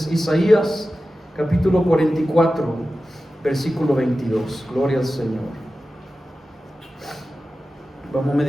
Isaías, capítulo 44, versículo 22. Gloria al Señor. Vamos a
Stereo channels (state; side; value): normal; both; correlation 0.94